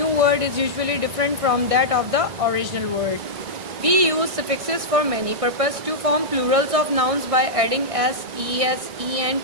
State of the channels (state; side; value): late; left; 1.6 ms